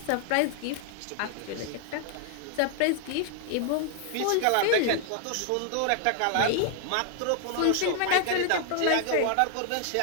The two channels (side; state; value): both; different; correlation 0.00